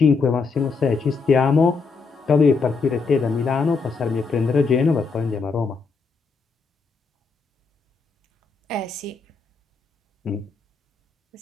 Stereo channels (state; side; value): quieter; right; 4.7 dB